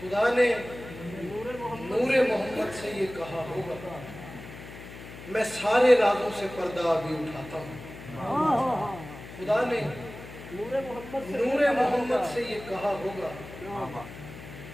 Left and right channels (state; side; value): noise; left; hum, 14 dB below the sound